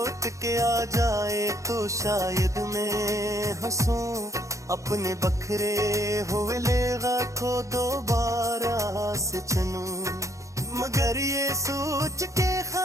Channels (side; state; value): left; late; 0.15 ms